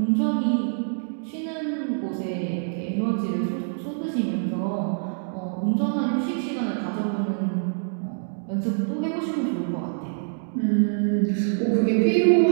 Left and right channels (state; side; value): silent; left; digital silence